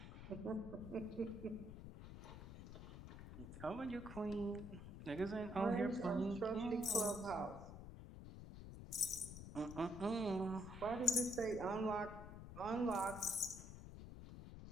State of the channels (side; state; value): left; noise; rumble, 11 dB below the sound